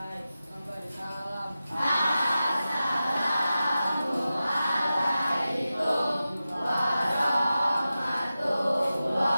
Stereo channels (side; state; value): both; inverted; correlation -0.93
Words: Memberi salam. Assalamualaikum